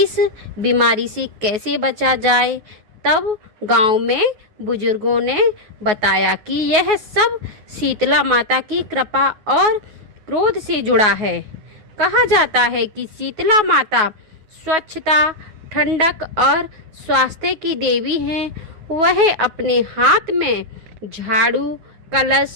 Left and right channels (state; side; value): late; left; 9.4 ms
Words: बीमारी से कैसे बचा जाए। तब गांव में बुजुर्गों ने बताया कि यह सब शीतला माता की कृपा और क्रोध से जुड़ा है। कहा जाता है कि शीतला माता स्वच्छता, ठंडक और स्वास्थ्य की देवी हैं। वह अपने हाथ में झाड़ू,